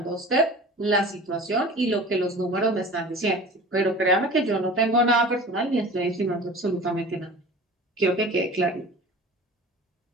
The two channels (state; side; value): normal; both; correlation 0.39